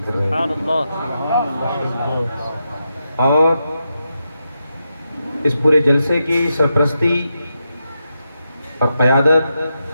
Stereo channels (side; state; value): both; inverted; correlation -0.86